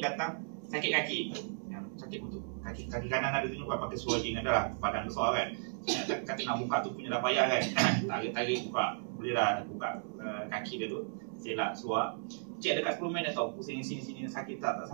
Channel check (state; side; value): silent; left; digital silence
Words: datang sakit kaki. Sakit betul. Kaki kanan ada tu pakai swajing adalah badan besar kan. Kata nak buka tu punya dah payah kan. Tarik buka. Boleh lah buka kaki dia tu. Selak suar. Cek dekat 10 minit tau. Pusing sini sakit tak